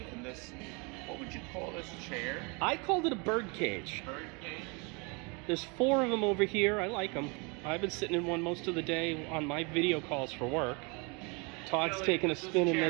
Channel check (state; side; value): quieter; left; 31.0 dB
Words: in this, what would you call this chair? I called it a bird cage. Bird cage? There's 4 of them over here. I like them. I've been sitting in one most of the day on my video calls for work. Todd's taking a spin in